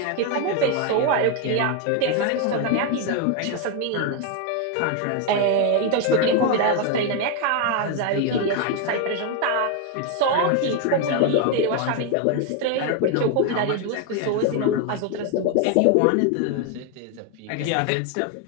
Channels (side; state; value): both; different; correlation 0.01